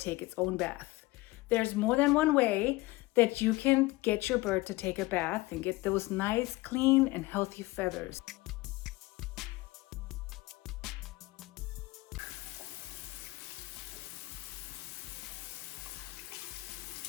its own bath. There's more than one way that you can get your bird to take a bath and get those nice, clean, and healthy feathers.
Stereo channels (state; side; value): quieter; right; 20.6 dB